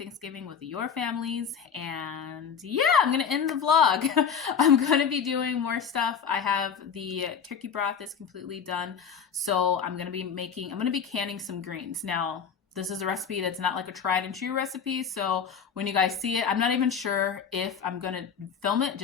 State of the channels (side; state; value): right; quieter; 6.9 dB